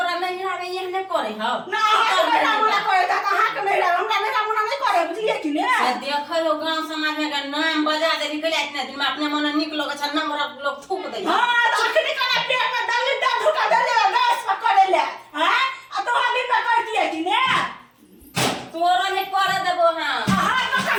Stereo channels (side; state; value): both; identical; correlation 1.00